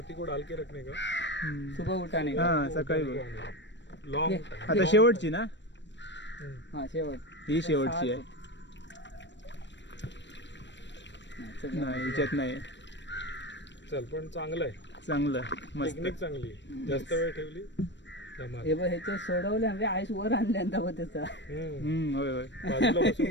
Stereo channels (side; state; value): right; late; 0.53 ms